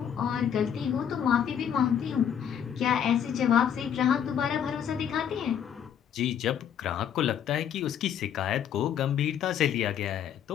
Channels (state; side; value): quieter; right; 8.8 dB